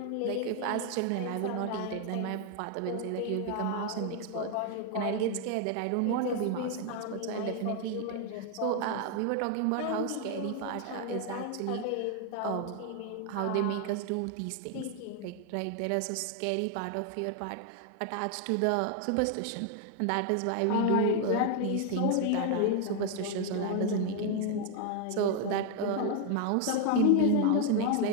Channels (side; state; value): both; different; correlation 0.01